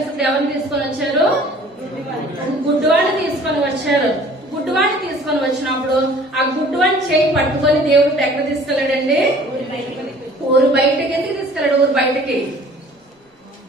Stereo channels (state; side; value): normal; both; correlation 0.51